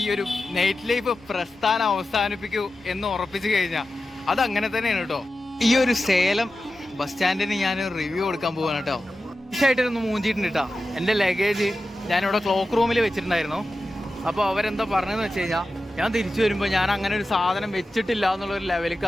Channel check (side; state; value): both; normal; correlation 0.93